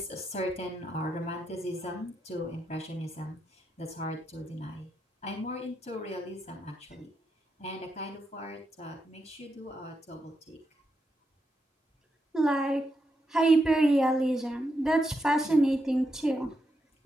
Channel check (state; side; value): normal; both; correlation 0.83